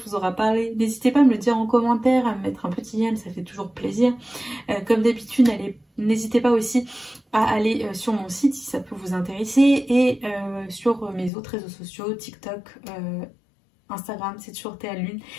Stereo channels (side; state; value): right; drops out; at 11.3 s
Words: vous aura parlé. N'hésitez pas à me le dire en commentaire, à me mettre un petit j'aime, ça fait toujours plaisir. Comme d'habitude, n'hésitez pas aussi à aller sur mon site si ça peut vous intéresser et sur mes autres réseaux sociaux, TikTok, Instagram, c'est toujours Théa Lune.